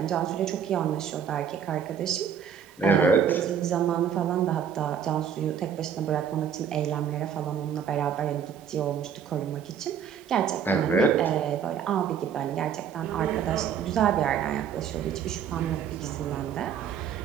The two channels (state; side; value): quieter; left; 7.9 dB